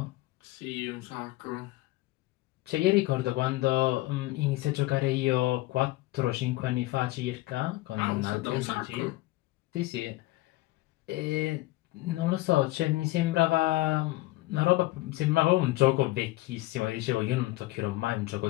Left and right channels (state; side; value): quieter; right; 18.7 dB